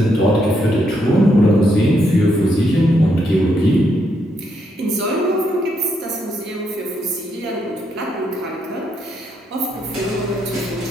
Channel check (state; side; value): normal; both; correlation 0.77